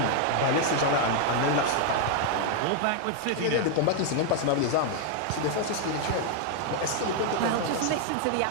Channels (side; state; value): both; different; correlation 0.00